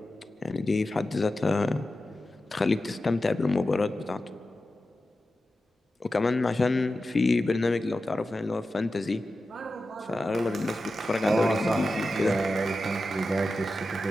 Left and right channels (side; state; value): both; normal; correlation 0.92